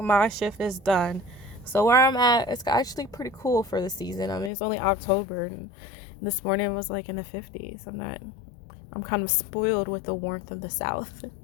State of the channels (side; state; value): right; drops out; at 4.5 s